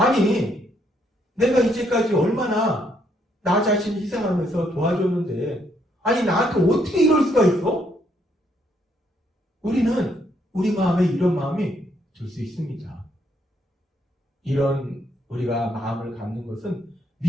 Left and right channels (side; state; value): both; normal; correlation 0.72